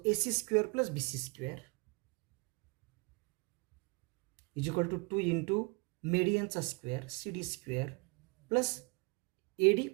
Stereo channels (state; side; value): quieter; left; 30.4 dB